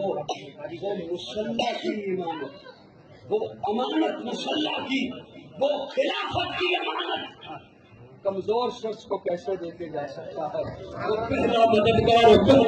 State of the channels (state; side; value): identical; both; correlation 1.00